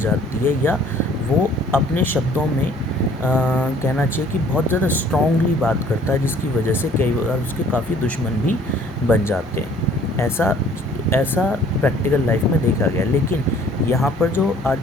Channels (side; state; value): both; normal; correlation 0.55